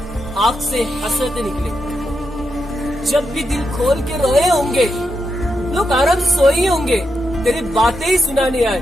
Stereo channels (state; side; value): normal; both; correlation 0.84